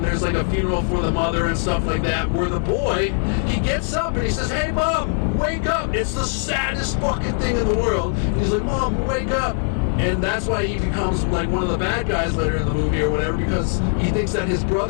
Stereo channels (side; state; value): right; silent; 65 dB below the other